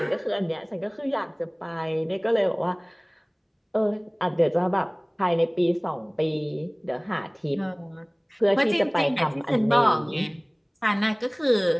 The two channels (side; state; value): both; identical; correlation 1.00